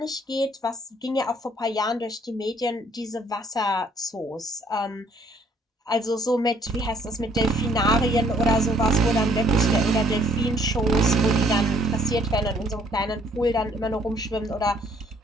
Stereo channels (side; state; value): both; normal; correlation 0.64